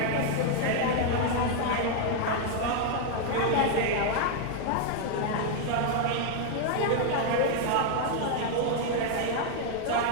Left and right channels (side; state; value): both; different; correlation 0.00